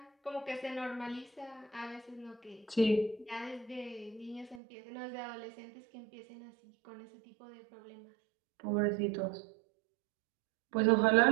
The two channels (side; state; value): left; drops out; at 4.6 s